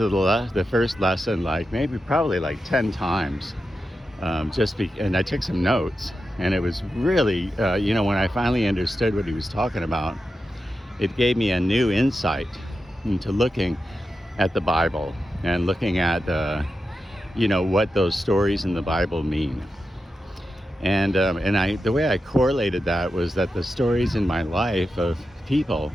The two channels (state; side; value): normal; both; correlation 0.89